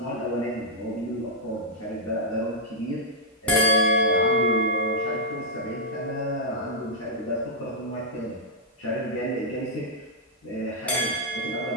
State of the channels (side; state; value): both; normal; correlation -0.08